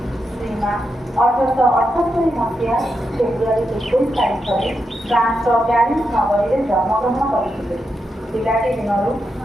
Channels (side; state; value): both; normal; correlation 0.85